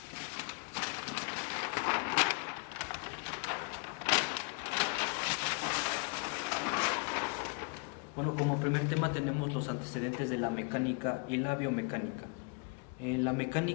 Bueno, como primer tema tenemos los antecedentes de la mecánica y la biomecánica. La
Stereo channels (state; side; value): quieter; right; 35.9 dB